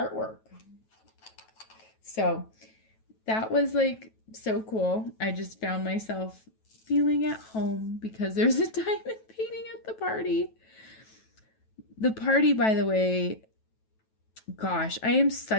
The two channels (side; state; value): right; late; 9.2 ms